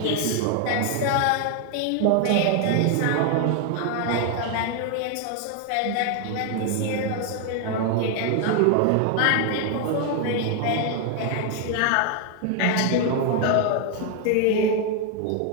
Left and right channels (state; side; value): different; both; correlation 0.01